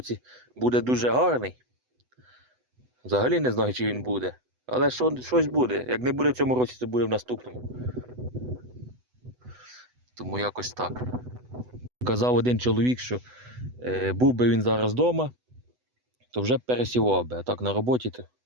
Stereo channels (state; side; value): late; left; 8.0 ms